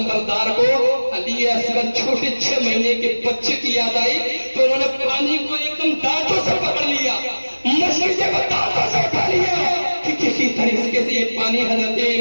کو علی اصغر چھوٹے 6 مہینے کے بچے کی یاد آئی تو انہوں نے پانی کو ایک دم دانتوں سے پکڑ لیا، مشکل کو دانتوں سے اٹھا لیا کہ کسی طریقے سے یہ پانی حضرت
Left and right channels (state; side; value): inverted; both; correlation -1.00